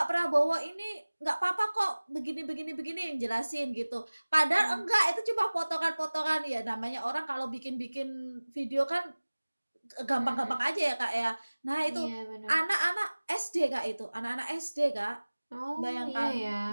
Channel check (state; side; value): inverted; both; correlation -1.00